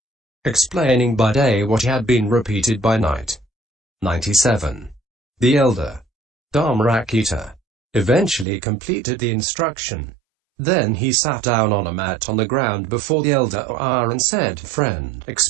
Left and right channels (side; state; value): left; drops out; at 8.5 s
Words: explaining by day what had been repeated by night. 97. The elder Dharmarakita eventually completed the instruction. Then he sat down on a mat on the ground before the elder and said, friend,